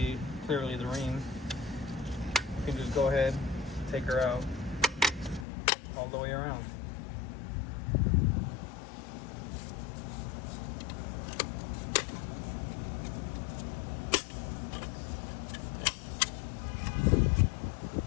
clearly the ring. You can just go ahead, take her out all the way around.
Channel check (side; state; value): right; drops out; at 5.5 s